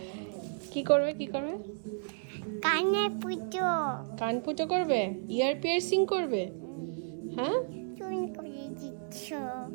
কি করবে কি করবে? কানে পুজো কান ফুটো করবে, ইয়ার পিয়ার্সিং করবে। হ্যাঁ চুন করে দিচ্ছ।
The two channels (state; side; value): silent; left; 56 dB below the other